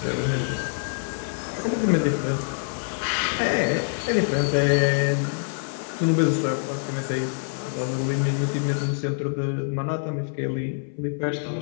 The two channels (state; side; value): silent; right; 58 dB below the other